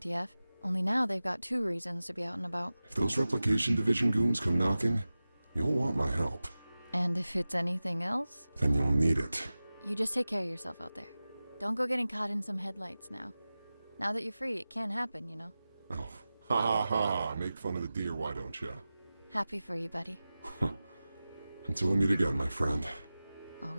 Only now they've got 2 reasons to be out and about. If those replication division goons come knocking, you'll want my help. And if it's anything else? Then you'll need it. You just take care of yourself out there. Don't go getting caught in some headlights now. Now that you're free, it can happen, you know. Oh, ha ha ha. Make fun of the deer, why don't you? Happy for you, buddy. Until we meet again, my friend.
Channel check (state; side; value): inverted; both; correlation -0.96